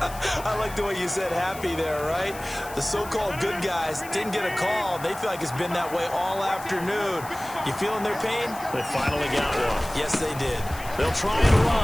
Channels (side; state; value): left; noise; hiss, 16 dB below the sound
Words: I like the way you said happy there, right? The so-called good guys didn't get a call. They feel like it's been that way all afternoon. You feeling their pain? They finally got one. Yes, they did. They'll try and